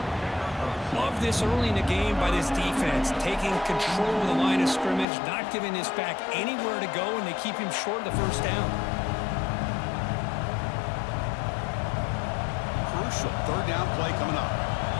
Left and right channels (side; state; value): right; drops out; at 5.1 s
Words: Love this early in the game by this defense, taking control of the line of scrimmage, not giving this back anywhere to go, and they keep him short of the first down. Crucial third down play coming up.